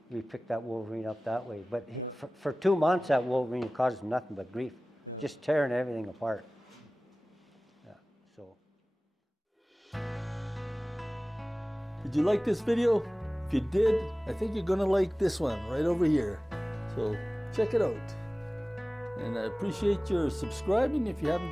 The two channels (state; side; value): normal; both; correlation 0.98